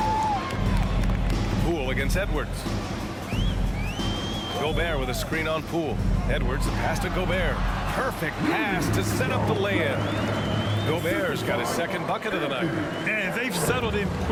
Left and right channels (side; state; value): both; identical; correlation 1.00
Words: Poole against Edwards. Gobert with a screen on Poole. Edwards, the pass to Gobert. Perfect pass to set up the lay-in. Gobert's got his second bucket of the night. And they've settled in